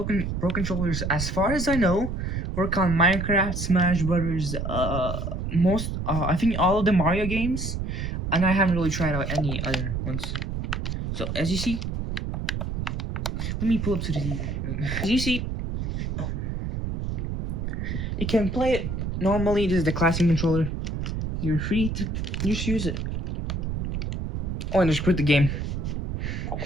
controllers, as far as I know, work on Minecraft, Smash Brothers, I think all of the Mario games, and I haven't really tried out any other ones. So as you see, let me pull up to the TV. As you see, you can play it normally. This is the classic controller. You're free to just use it. Oh, and just quit the game.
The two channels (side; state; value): right; noise; rumble, 3 dB below the sound